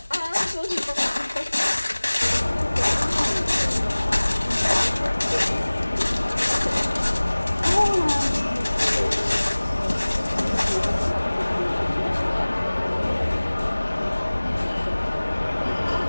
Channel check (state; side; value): inverted; both; correlation -1.00